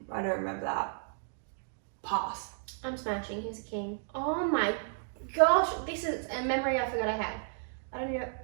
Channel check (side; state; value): left; silent; digital silence